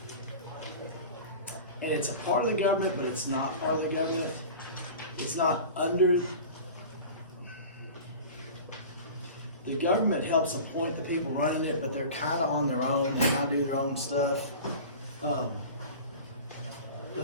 and it's a part of the government, but it's not part of the government. It's not under. The government helps appoint the people running it, but they're kind of on their own and kind of do their own stuff. The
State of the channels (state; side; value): inverted; both; correlation -0.36